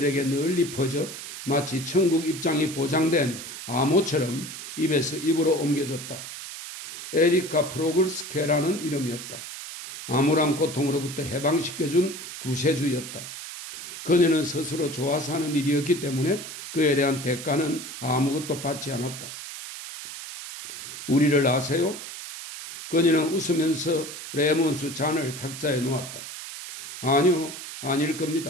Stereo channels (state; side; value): noise; right; hiss, 10 dB below the sound